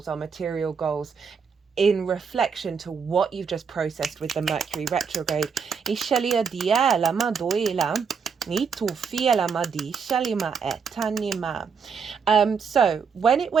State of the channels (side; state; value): left; quieter; 6.1 dB